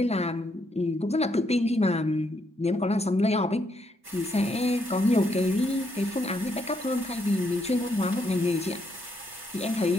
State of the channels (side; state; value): both; normal; correlation 0.76